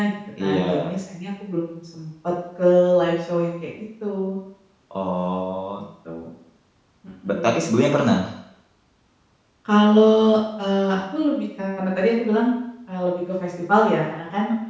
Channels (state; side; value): identical; both; correlation 1.00